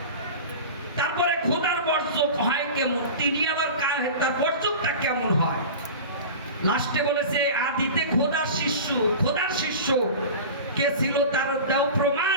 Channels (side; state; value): both; inverted; correlation -0.33